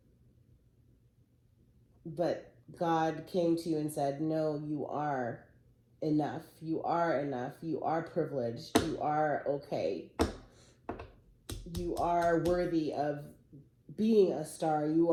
but God came to you and said, no, you are enough. You are enough. You are privileged. You are okay. You are worthy of being a star. You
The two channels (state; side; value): identical; both; correlation 1.00